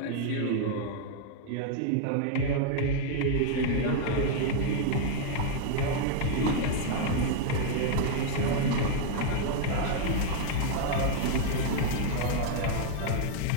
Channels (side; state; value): both; different; correlation 0.00